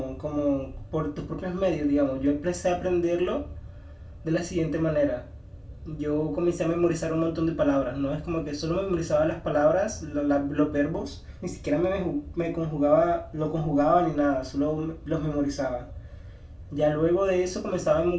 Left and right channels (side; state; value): both; identical; correlation 1.00